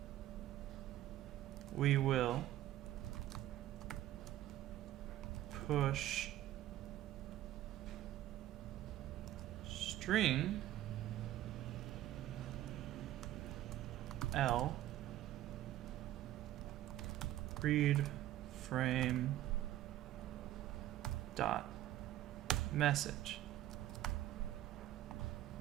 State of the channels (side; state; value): left; quieter; 13.8 dB